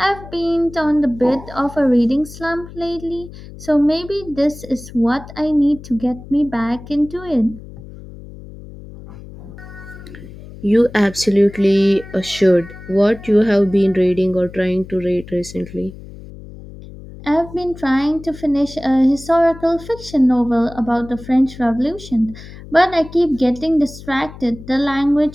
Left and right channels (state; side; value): noise; left; hum, 16 dB below the sound